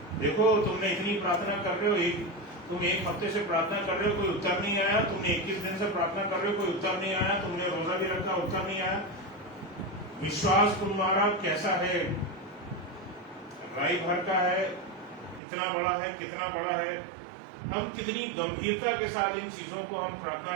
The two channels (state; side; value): drops out; left; at 15.4 s